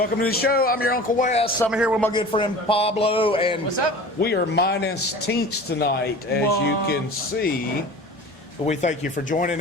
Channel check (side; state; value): both; normal; correlation 0.39